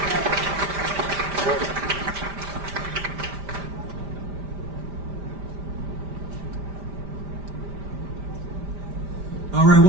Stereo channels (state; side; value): late; left; 5.0 ms